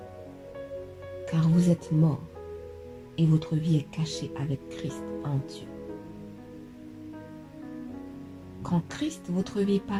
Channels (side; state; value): both; identical; correlation 1.00